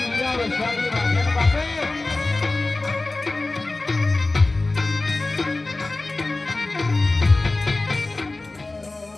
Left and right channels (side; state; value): right; quieter; 3.1 dB